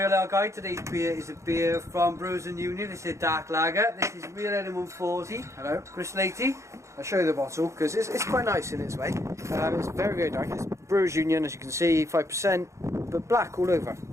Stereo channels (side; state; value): left; late; 0.14 ms